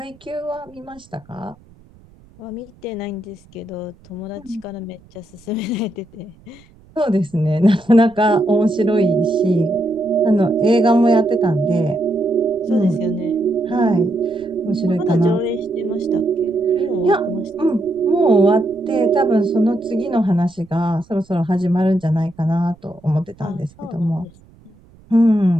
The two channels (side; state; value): right; noise; rumble, 27 dB below the sound